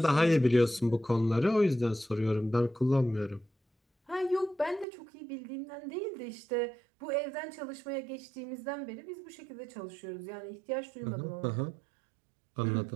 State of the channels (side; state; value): left; drops out; at 4.9 s